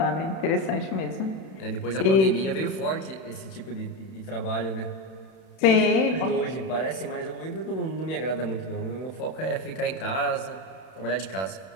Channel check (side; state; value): right; late; 31 ms